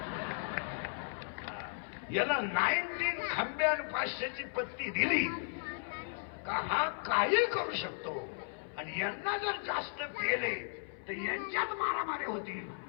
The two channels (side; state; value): right; silent; 54 dB below the other